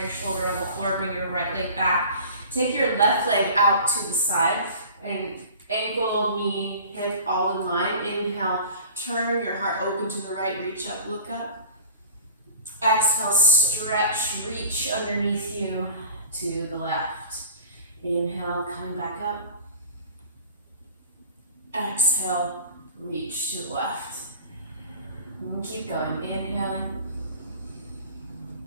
shoulder on the floor, bring your right leg back. Take your left leg out to the side and ankle, knee, hip all in line. Inhale, turn your heart open to the right, reach up, look up. Exhale, stretch, reach underneath you to the left. Inhale, coming back up. Exhale, reach to the left. And keep going, inhaling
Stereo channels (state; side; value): inverted; both; correlation -0.42